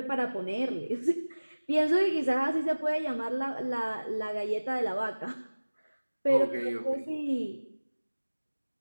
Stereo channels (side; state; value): both; inverted; correlation -1.00